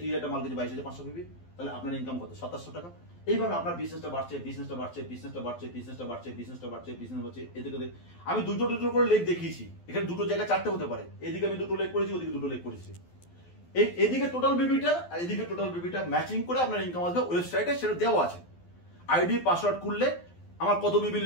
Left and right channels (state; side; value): late; right; 12 ms